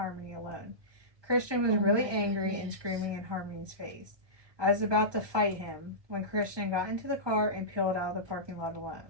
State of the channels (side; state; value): left; late; 1.2 ms